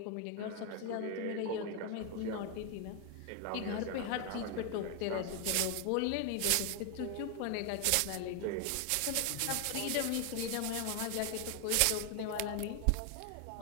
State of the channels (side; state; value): both; different; correlation 0.01